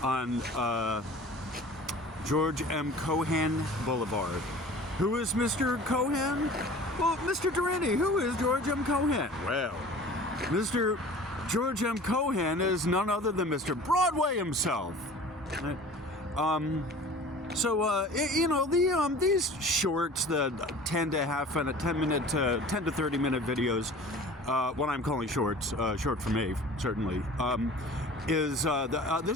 on George M. Cohan Boulevard. Who is Mr. Cohan? Well, Mr. Durini, who is George M. Cohan? Well, Mr. George M. Cohan is none other than Mr. Broadway himself. These shorts, the 10 to 30 minute videos, what I'm calling shorts, short for me, certainly, this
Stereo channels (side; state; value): both; normal; correlation 0.43